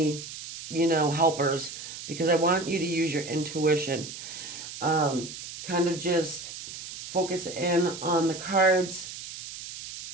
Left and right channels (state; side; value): noise; right; hiss, 11 dB below the sound